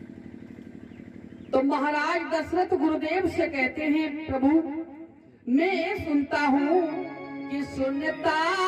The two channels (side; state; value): both; identical; correlation 1.00